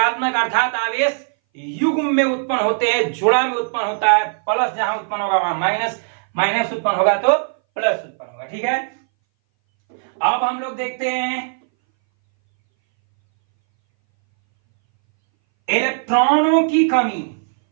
अर्थात आवेश युग्म में उत्पन्न होते हैं, जोड़ा में उत्पन्न होता है। प्लस जहां उत्पन्न होगा वहां माइनस, माइनस उत्पन्न होगा तो प्लस उत्पन्न होगा। ठीक है, अब हम लोग देखते हैं इलेक्ट्रॉनों की कमी।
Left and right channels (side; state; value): left; silent; 61 dB below the other